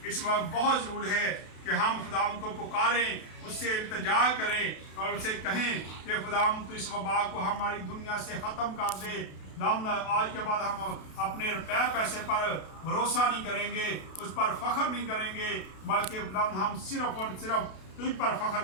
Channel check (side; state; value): right; late; 32 ms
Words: इस वक्त बहुत ज़रूरी है कि हम खुदा को पुकारें, उससे इल्तिजा करें और उससे कहें कि खुदा तो इस वबा को हमारी दुनिया से ख़त्म कर दे। आज के बाद हम अपने रुपये पैसे पर भरोसा नहीं करेंगे, उस पर फ़ख्र नहीं करेंगे, बल्कि हम सिर्फ और सिर्फ तुझ पर फ़ख्र